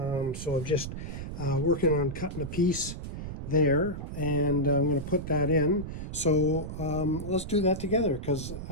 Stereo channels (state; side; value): noise; right; rumble, 7 dB below the sound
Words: I'm just working on cutting a piece there, and I'm going to put that in. So let's do that together, because